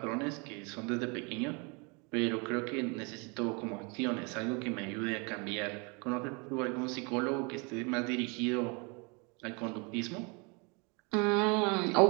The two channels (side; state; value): left; quieter; 31.1 dB